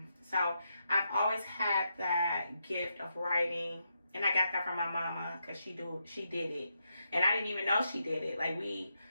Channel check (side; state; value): both; inverted; correlation -0.83